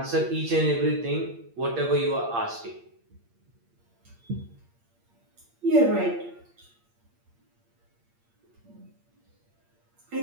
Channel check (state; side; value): late; left; 8.7 ms